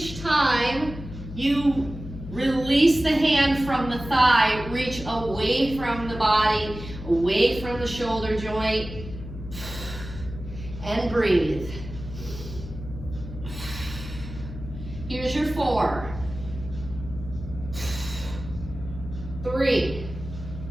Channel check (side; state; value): left; noise; hum, 11 dB below the sound